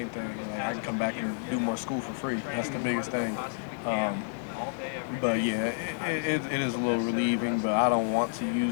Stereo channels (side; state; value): right; silent; 58 dB below the other